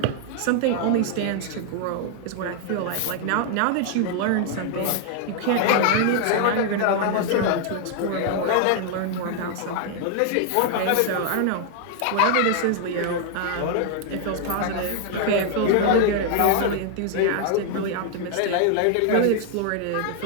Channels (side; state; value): both; different; correlation 0.00